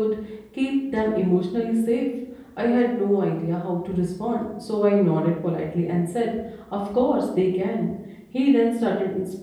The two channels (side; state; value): both; identical; correlation 1.00